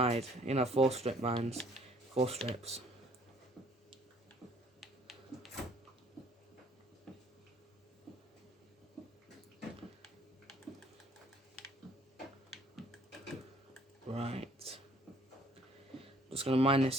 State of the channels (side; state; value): both; normal; correlation 0.59